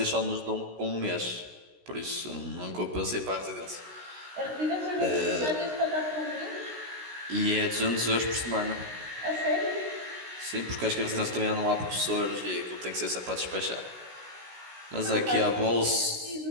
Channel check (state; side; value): late; left; 16 ms